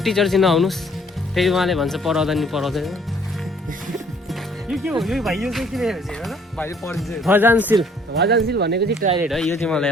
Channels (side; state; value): both; normal; correlation 0.60